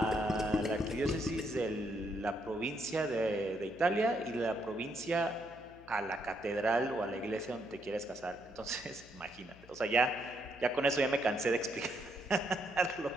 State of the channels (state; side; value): noise; left; hum, 22 dB below the sound